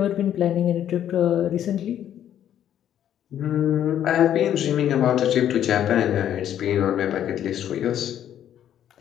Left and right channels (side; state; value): right; quieter; 10.5 dB